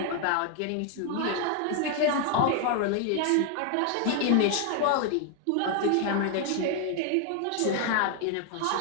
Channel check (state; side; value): different; both; correlation 0.00